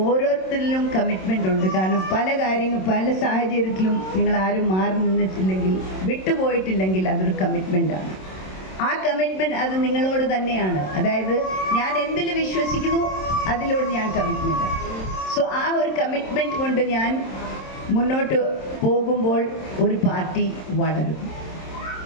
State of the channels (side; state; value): right; late; 27 ms